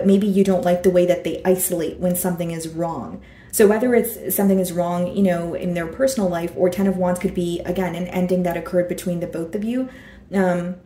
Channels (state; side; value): identical; both; correlation 1.00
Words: maybe you don't like the way that they isolate when something is wrong. So whether it's something is wrong, you know, in their personal life, or 10 of Wands could be, again, an ending that occurred between the both of you.